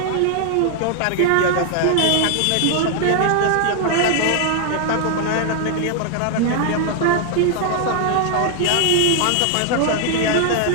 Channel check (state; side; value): different; both; correlation 0.00